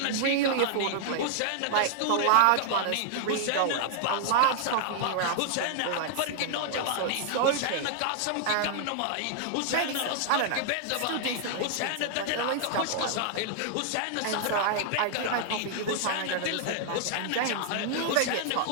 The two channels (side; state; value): both; different; correlation -0.01